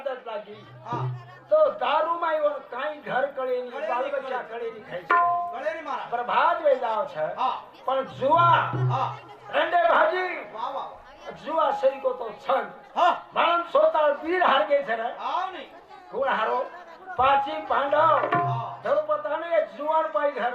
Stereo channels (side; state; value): both; identical; correlation 1.00